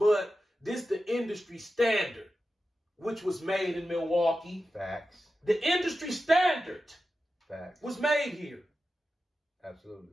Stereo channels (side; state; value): both; normal; correlation 0.92